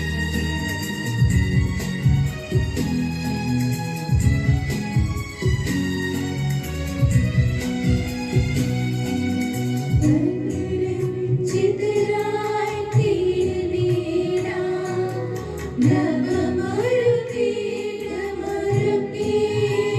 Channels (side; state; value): both; identical; correlation 1.00